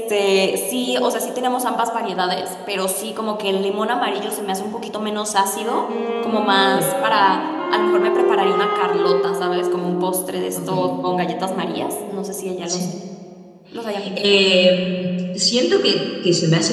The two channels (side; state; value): both; identical; correlation 1.00